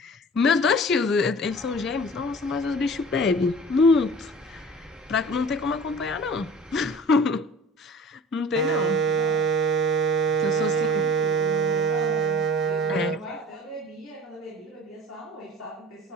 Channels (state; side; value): normal; both; correlation 0.43